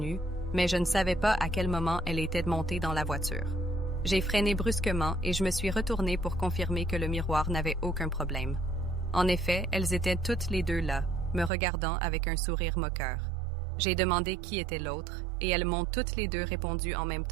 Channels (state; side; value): drops out; left; at 11.5 s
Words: mais je ne savais pas à quel moment elle était montée dans la voiture. J'ai freiné brusquement et je me suis retournée pour confirmer que le miroir n'avait aucun problème. En effet, elles étaient toutes les 2 là, me regardant avec un sourire moqueur. J'ai demandé qui était l'autre, et elles m'ont toutes les 2 répondu en même